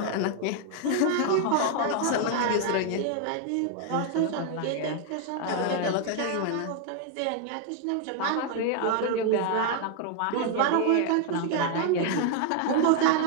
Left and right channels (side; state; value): both; different; correlation 0.00